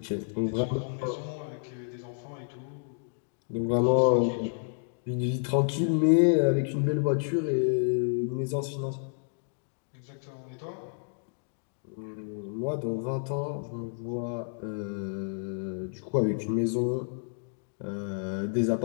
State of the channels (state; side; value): silent; right; digital silence